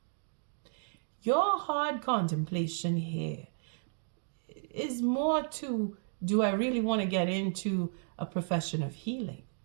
Your hard contemplation here is more to, do I really want to get into a profession of healing,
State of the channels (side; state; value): left; silent; digital silence